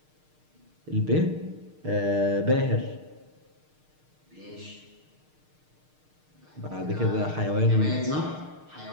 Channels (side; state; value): left; late; 6.5 ms